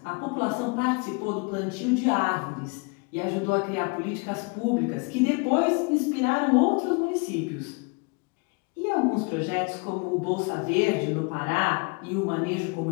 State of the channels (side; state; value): right; quieter; 31.0 dB